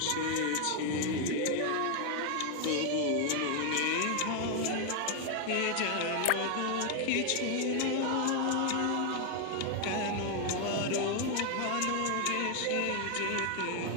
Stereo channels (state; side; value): different; both; correlation 0.00